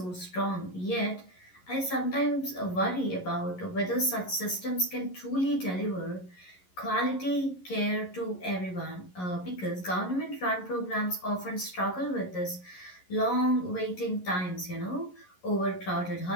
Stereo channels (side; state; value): right; late; 11 ms